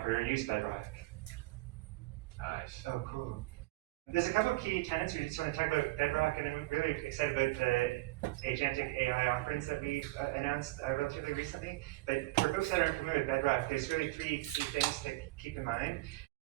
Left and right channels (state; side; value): quieter; left; 20.0 dB